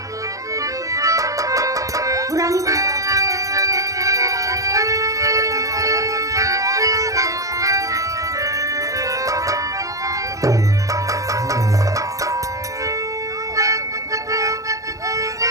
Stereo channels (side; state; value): left; late; 0.16 ms